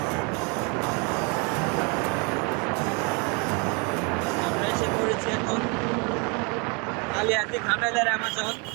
আমরা এসে পড়েছি এখন কালিয়াতি ঘাটালের অ্যামাজন।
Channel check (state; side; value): quieter; left; 32.7 dB